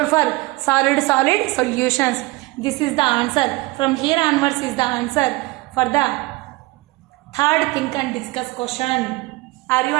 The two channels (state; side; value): quieter; left; 22.5 dB